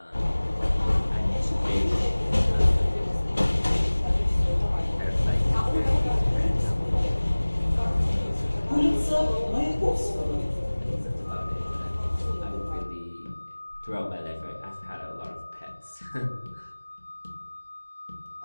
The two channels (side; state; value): both; inverted; correlation -1.00